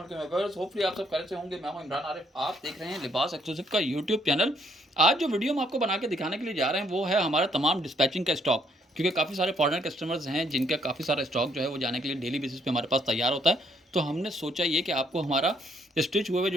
वालेकुम viewers, hopefully आप सब खैरियत से होंगे। मैं हूं इमरान आरिफ, आप देख रहे हैं लिबास एक्सक्लूसिव का यूट्यूब चैनल। आज जो वीडियो हम आपको बना के दिखाने के लिए जा रहे हैं वो है हमारा तमाम डिस्पैचिंग का स्टॉक, क्योंकि काफ़ी सारे फॉरेनर कस्टमर्स हैं जिनका काफ़ी सारा स्टॉक जो है वो जाने के लिए डेली बेसिस पे हमारे पास तैयार होता है। तो हमने सोचा ये कि आपको हमारा स्टिच हुए हुए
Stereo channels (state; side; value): normal; both; correlation 0.68